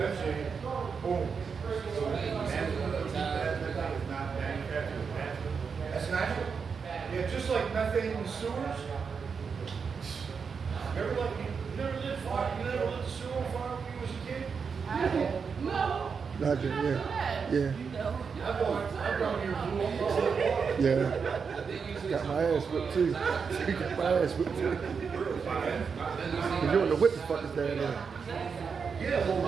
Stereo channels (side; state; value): left; quieter; 5.8 dB